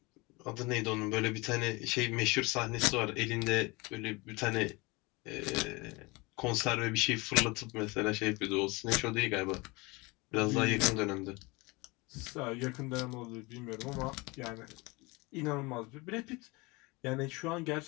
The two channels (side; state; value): right; quieter; 25.1 dB